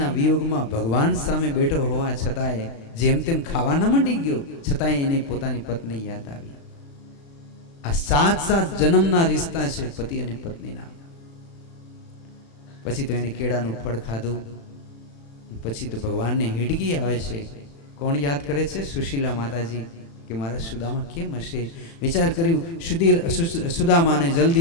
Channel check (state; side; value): late; right; 36 ms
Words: વિયોગમાં ભગવાન સામે બેઠો હોવા છતાંય જેમ તેમ ખાવા ન માંડી ગયો, છતાંય એને પોતાની પત્ની યાદ આવી. આ 7 જન્મના રિશ્તા છે પતિ અને પત્નીના. પછી તો એને કેળાનું ફળ ખાધું. પછી તો ભગવાનને હિડકી આવે છે. કોણ યાદ કરે છે? સુશીલા માતાજી. કે મારા સુદામા કેમ હશે? વિચાર કર્યું, સુદામાને